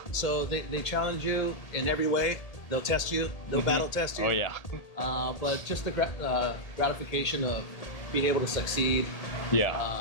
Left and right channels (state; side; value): late; right; 1.8 ms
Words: So they challenge you in every way. They'll test you. They'll battle test you. Oh yeah. But just the gratification of being able to succeed.